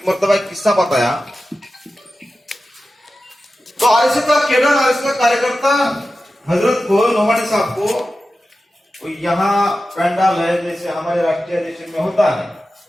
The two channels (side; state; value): both; normal; correlation 0.94